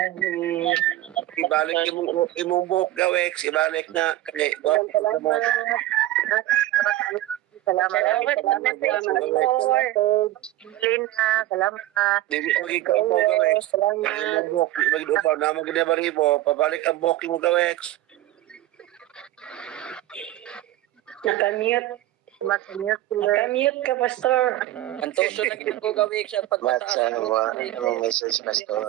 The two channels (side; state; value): left; quieter; 15.4 dB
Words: Ibalik imong buhok Gawek. Ibalik na. Kaya, Salamat. Pastor. Lina, salamat. Hindi magiging mo Gawek. Salamat. Imong buhok. Mag-upaw na mag-debaribo. Pabalik ang buhok mo Gawek. Nakamute. Nakamute ka, Pastor. Ang tuso na ginagawa gawik sa pagpataas. message